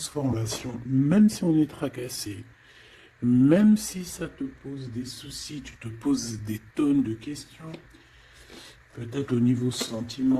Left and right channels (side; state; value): both; identical; correlation 1.00